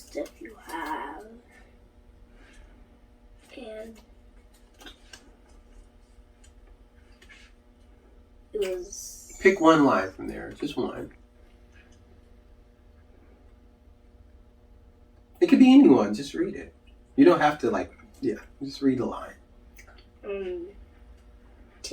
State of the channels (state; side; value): identical; both; correlation 1.00